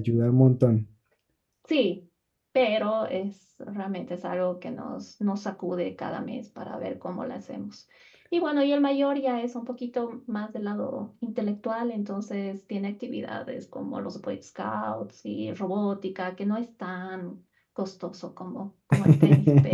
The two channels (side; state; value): both; identical; correlation 1.00